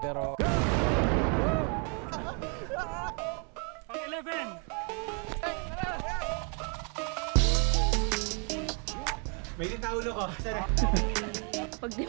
pero... Ang 11! May taulo ko. Sana. Pag di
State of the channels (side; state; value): left; quieter; 37.1 dB